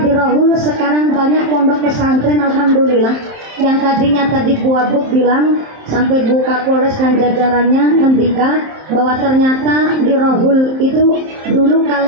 di Rahul sekarang banyak pondok pesantren, alhamdulillah. Yang tadinya tadi Bu Abuk bilang sampai Bu Kapolres dan jajarannya ngendika bahwa ternyata di Rahul itu dulu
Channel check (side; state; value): left; late; 27 ms